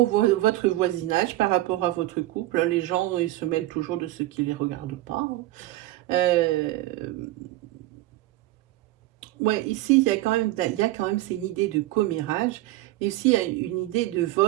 voisinage par rapport à votre couple. Les gens, ils se mêlent toujours de ce qui ne les regarde pas. Ouais, ici, il y a quand même, c'est une idée de commérage, mais aussi il y a une idée de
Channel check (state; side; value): quieter; left; 16.9 dB